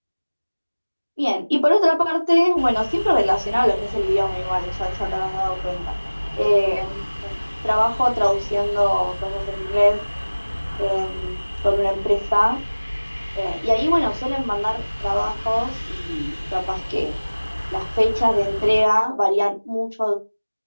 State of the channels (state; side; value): inverted; both; correlation -1.00